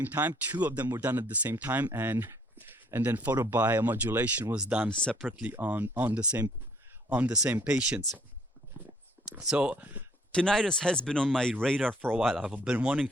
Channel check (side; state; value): both; normal; correlation 0.62